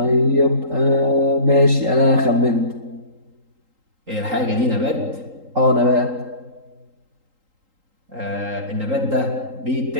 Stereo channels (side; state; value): left; late; 3.8 ms